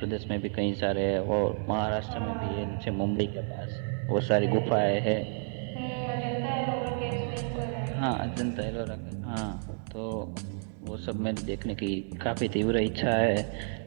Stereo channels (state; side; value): silent; left; 58 dB below the other